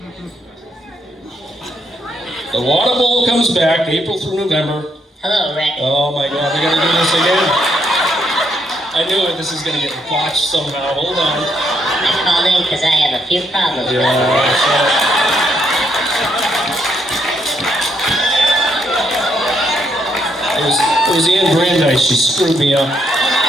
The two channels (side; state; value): both; normal; correlation 0.75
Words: The water bowl comes back April through November. Hello, Rick. Oh my God, we're gonna do this again. I knew it. This is gonna get botched somehow. Hold on. I called in because I have a few problems. It was Anne Brandeis. She screwed me up.